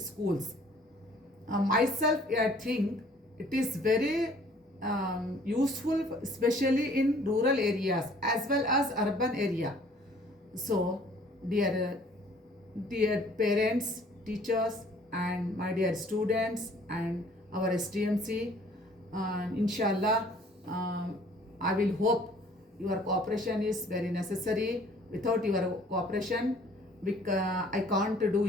schools. Myself, I think it is very useful, especially in rural areas as well as urban area. So, dear parents, teachers, and my dear students and our STMC, inshallah, I will hope your cooperation is very necessary. Without your cooperation, I can't do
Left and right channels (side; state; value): both; normal; correlation 0.56